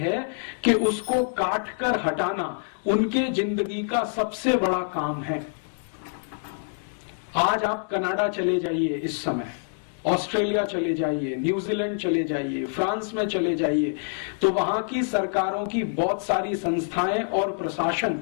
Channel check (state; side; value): silent; right; digital silence